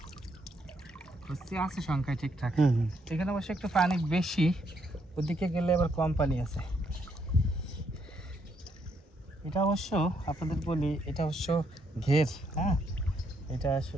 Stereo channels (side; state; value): both; normal; correlation 0.74